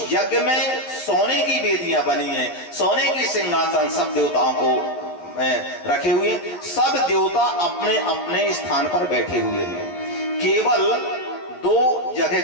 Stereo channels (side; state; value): right; late; 12 ms